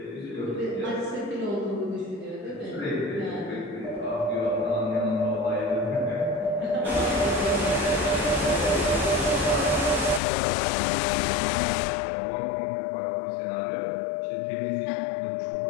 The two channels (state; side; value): drops out; right; at 10.2 s